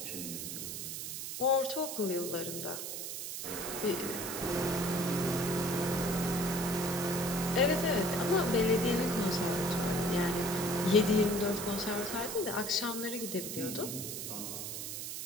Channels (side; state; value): right; noise; hiss, 5 dB below the sound